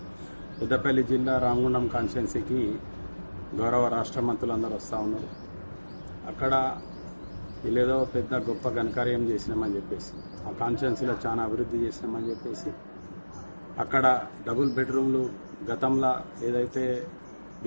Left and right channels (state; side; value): inverted; both; correlation -1.00